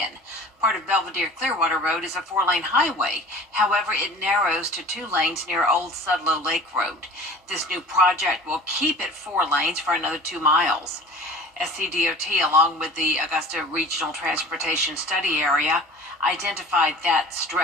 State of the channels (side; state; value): both; normal; correlation 0.43